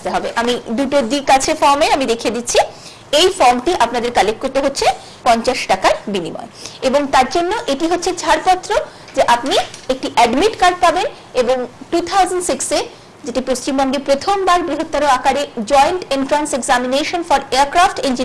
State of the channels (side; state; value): both; identical; correlation 1.00